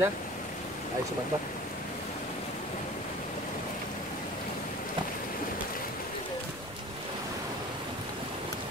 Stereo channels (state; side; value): normal; both; correlation 0.41